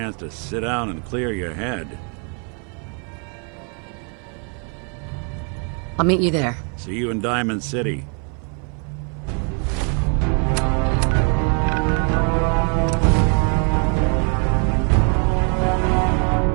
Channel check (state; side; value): quieter; left; 39.4 dB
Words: to sit down and clear your head. I'll meet you there. See you in Diamond City.